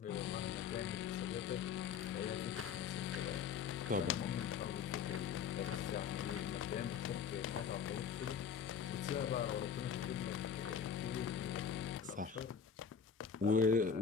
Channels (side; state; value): right; quieter; 6.9 dB